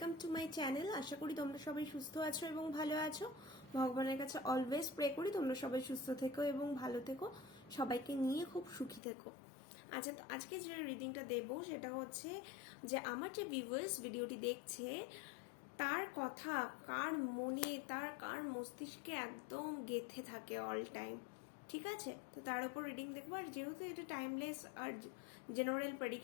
to my channel. আশা করি তোমরা সবাই সুস্থ আছো এবং ভালো আছো। ভগবানের কাছে অলওয়েজ প্রে করি তোমরা সবাই সুস্থ থেকো এবং ভালো থেকো, সবাইকে নিয়ে খুব সুখী থেকো। আচ্ছা, তো আজকে যে রিডিংটা দেবো সেটা হচ্ছে যে আমার যে ভিউয়ার্স ভিডিওটি দেখছে তার কথা কার মনে, কার মস্তিষ্কে একদম গেঁথে থাকে অল টাইম। ঠিক আছে, তো তার উপর রিডিং দেখবো। আর যেহেতু এটা টাইমলেস আর জেনারেল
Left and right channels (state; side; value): drops out; right; at 9.0 s